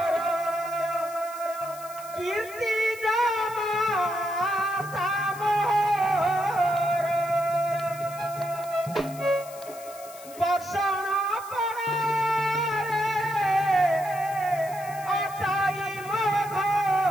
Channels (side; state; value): left; noise; hiss, 18 dB below the sound